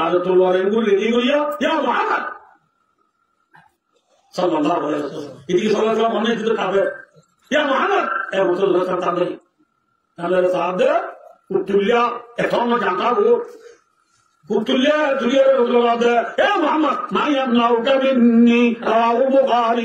طلوع يقول لي يا محمد صلى الله عليه وسلم يجي صلى الله عليه وسلم هناك كده يا محمد يا رسول الله صلى الله عليه وسلم هذا صاحب قلت له اتهم جانتا قلت له يا رسول الله يا محمد ما يمنعك مني رواه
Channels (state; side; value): identical; both; correlation 1.00